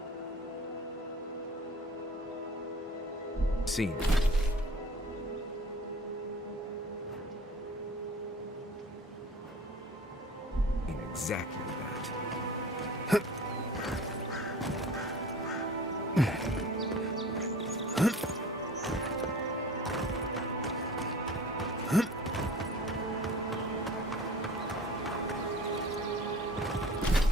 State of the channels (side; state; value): both; normal; correlation 0.43